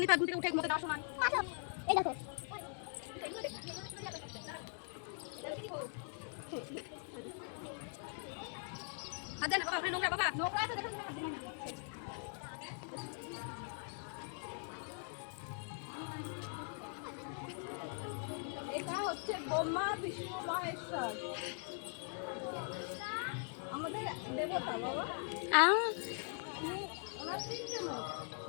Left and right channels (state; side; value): silent; right; 50 dB below the other